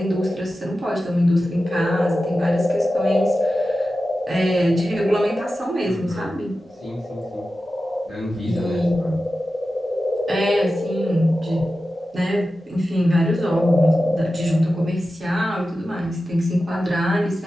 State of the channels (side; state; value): both; normal; correlation 0.93